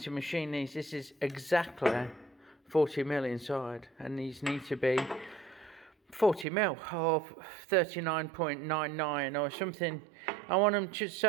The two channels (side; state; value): left; drops out; at 6.5 s